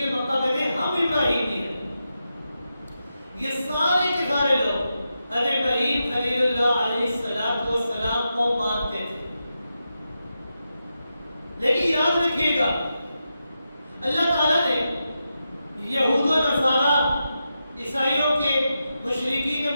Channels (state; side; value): inverted; both; correlation -0.88